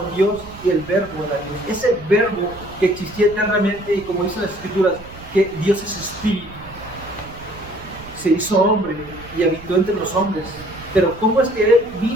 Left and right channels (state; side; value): noise; right; rumble, 17 dB below the sound